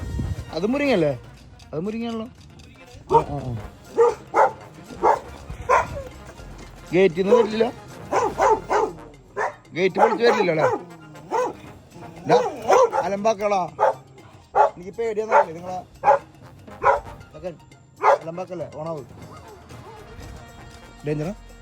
അത് മുരിങ്ങല്ലേ? അത് മുരിങ്ങയാണല്ലോ. ഗേറ്റിൽ നിന്ന് വരില്ല, ഗേറ്റ് പൊളിച്ച് വരില്ലല്ലോ അല്ലേ? അലമ്പാക്കളാ, എനിക്ക് പേടിയാന്നല്ലേ നിങ്ങളെ അലമ്പാക്കല്ലേ? ഓണാവ് ഡേഞ്ചറാ.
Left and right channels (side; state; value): both; identical; correlation 1.00